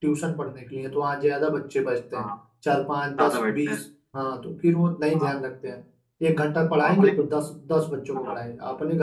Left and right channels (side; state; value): both; identical; correlation 1.00